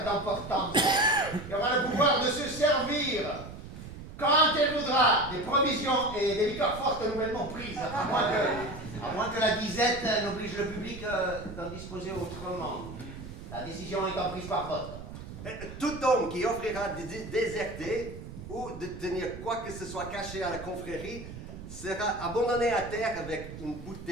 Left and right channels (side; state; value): right; noise; rumble, 12 dB below the sound